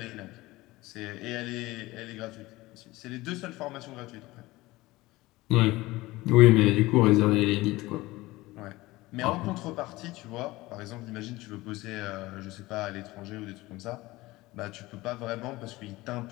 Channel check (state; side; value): quieter; right; 19.6 dB